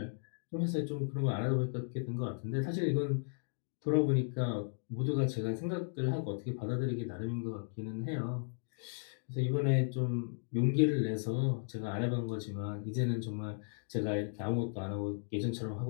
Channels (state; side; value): silent; right; digital silence